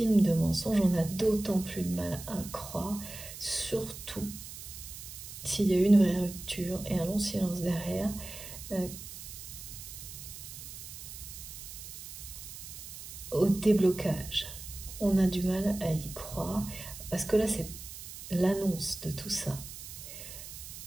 de mensonges, on a d'autant plus de mal à croire, surtout s'il y a eu une vraie rupture et un long silence derrière, au déblocage. On a du mal à y croire, parce que là, c'est l'annonce de tout ça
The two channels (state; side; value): noise; right; hiss, 12 dB below the sound